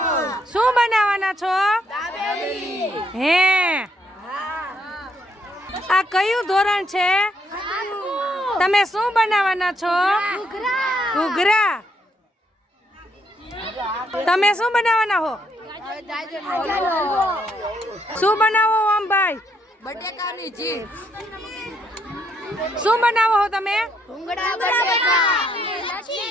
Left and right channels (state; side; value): normal; both; correlation 0.73